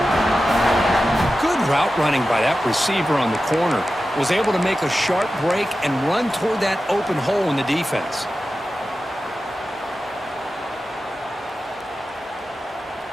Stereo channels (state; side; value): normal; both; correlation 0.93